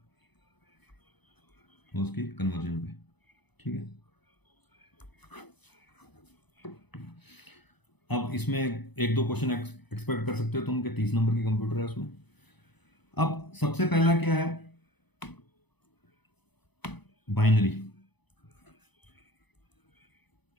और उसकी कन्वर्जन पे, ठीक है। अब इसमें एक दो क्वेश्चन एक्सपेक्ट कर सकते हो तुम कि 30 नंबर की कंप्यूटर है उसमें। अब सबसे पहला क्या है, बाइनरी।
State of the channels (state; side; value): late; right; 0.99 ms